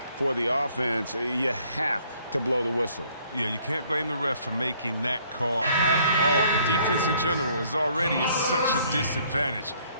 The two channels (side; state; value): both; inverted; correlation -0.63